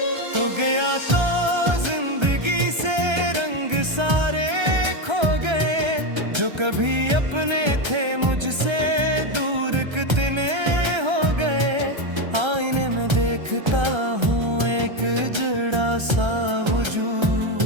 तो गया तो जिंदगी से रंग सारे खो गए, जो कभी अपने थे मुझसे दूर कितने हो गए। आईने में देखता हूँ एक जुड़ा सा वजूद,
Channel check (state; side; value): late; left; 1.3 ms